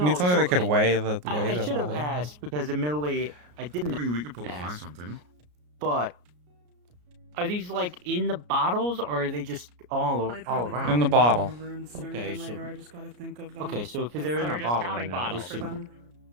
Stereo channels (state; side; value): late; left; 33 ms